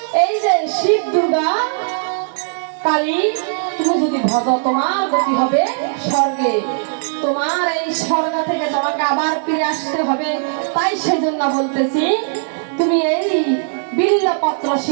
এই যে শিব দুর্গা কালী তুমি যদি ভজ তোমার গতি হবে স্বর্গে, তোমার এই স্বর্গ থেকে তোমাকে আবার ফিরে আসতে হবে। তাই সেজন্য বলতেছি তুমি এই বিল্লপত্র পত্র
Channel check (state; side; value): silent; left; digital silence